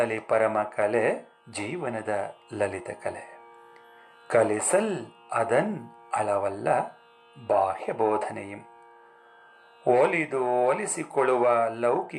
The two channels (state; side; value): identical; both; correlation 1.00